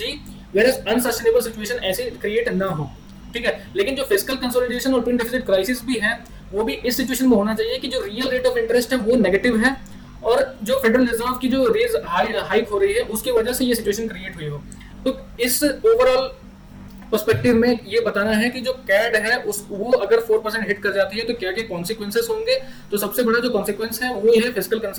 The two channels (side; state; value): both; identical; correlation 1.00